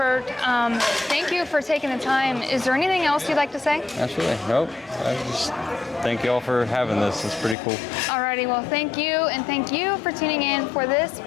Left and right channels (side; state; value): right; drops out; at 7.6 s